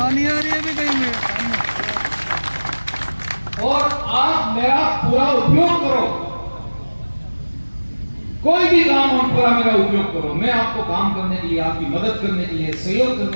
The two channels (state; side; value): inverted; both; correlation -1.00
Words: और आप मेरा पूरा उपयोग करो, कोई भी काम हो पूरा मेरा उपयोग करो। मैं आपको काम करने के लिए, आपकी मदद करने के लिए, सहयोग